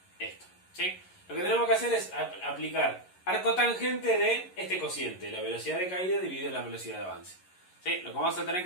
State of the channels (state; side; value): late; right; 11 ms